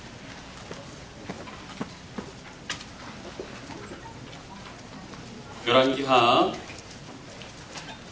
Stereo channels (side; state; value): both; identical; correlation 1.00